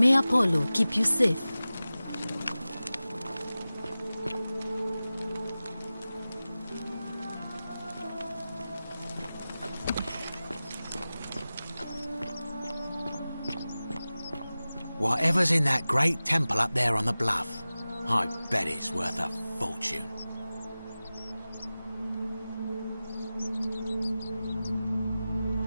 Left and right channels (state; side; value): inverted; both; correlation -0.96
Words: Apollo keep you safe. Whatever's in that great temple up there on the bluff, I bet it's worth a fortune.